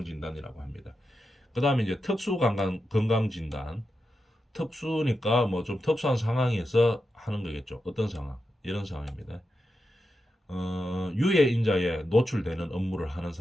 진단이라고 합니다. 그다음에 이제 특수 건강 진단. 특수니까 뭐 좀 특수한 상황에서 하는 거겠죠. 어떤 상황? 이런 상황입니다. 유해 인자에 노출되는 업무를 하는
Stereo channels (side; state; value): both; normal; correlation 0.88